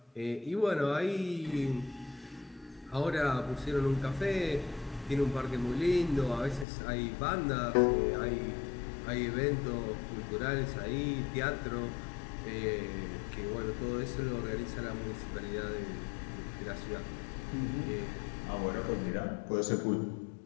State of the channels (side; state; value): right; drops out; at 6.7 s